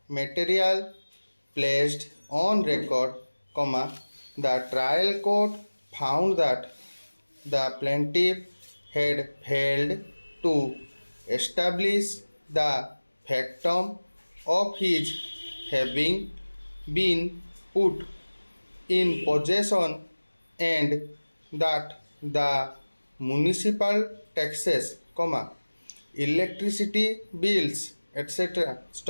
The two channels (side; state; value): both; inverted; correlation -1.00